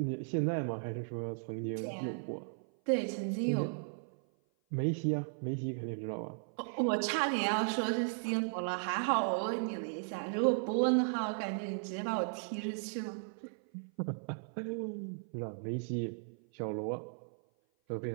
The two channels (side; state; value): left; silent; 54 dB below the other